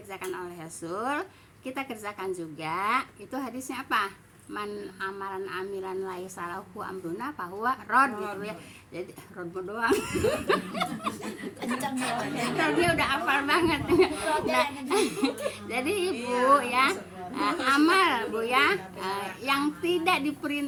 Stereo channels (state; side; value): identical; both; correlation 1.00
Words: oleh Rasul, kita kerjakan juga. Itu hadisnya apa? Man amalan amilan laisa lahu amruna fahuwa rad gitu ya. Jadi rod doang. Dia udah hafal banget. Nah, jadi Ibu ya, amal, Bu ya, yang tidak